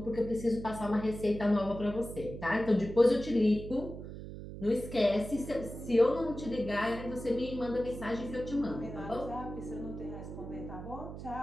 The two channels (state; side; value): noise; right; hum, 10 dB below the sound